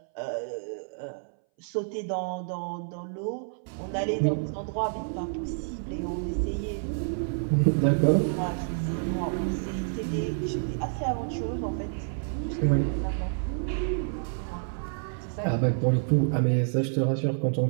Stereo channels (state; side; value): silent; left; 59 dB below the other